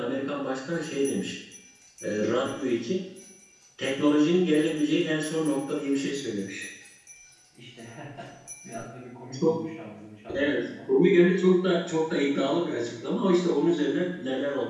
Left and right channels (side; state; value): both; identical; correlation 1.00